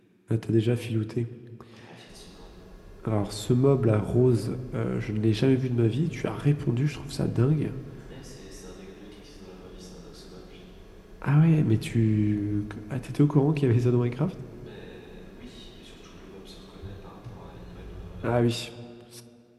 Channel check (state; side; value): identical; both; correlation 1.00